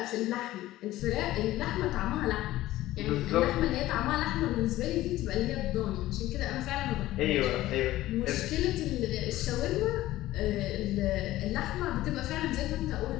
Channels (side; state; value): right; quieter; 15.8 dB